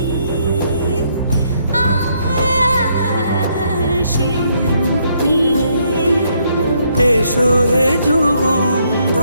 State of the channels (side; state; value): both; inverted; correlation -0.72